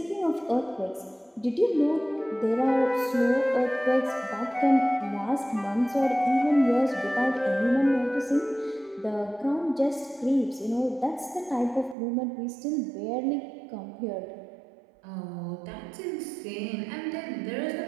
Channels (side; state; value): left; drops out; at 12.0 s